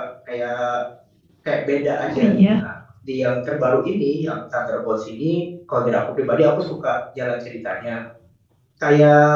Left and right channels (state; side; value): identical; both; correlation 1.00